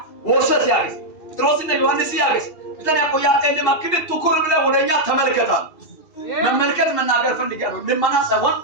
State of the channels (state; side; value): late; right; 2.5 ms